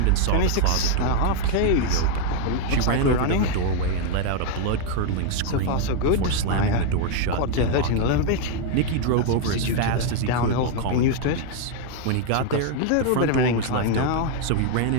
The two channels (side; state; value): both; different; correlation 0.00